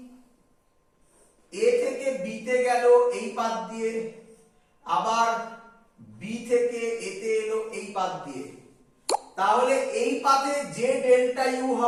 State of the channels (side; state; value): both; identical; correlation 1.00